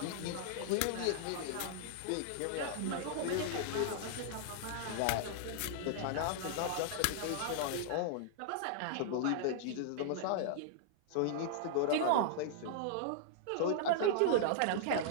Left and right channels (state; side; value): different; both; correlation -0.01